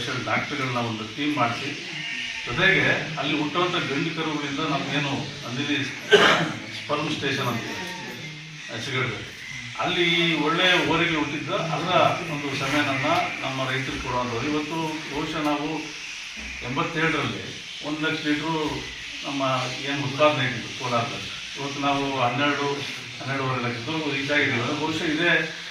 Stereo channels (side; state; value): both; identical; correlation 1.00